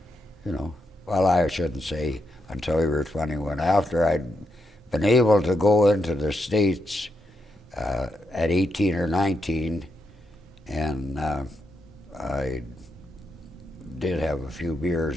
you know, well, I shouldn't say until you were 21. After I'd been able to go into the States at 18 or 19, and I did have a few beers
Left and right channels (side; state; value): both; normal; correlation 0.83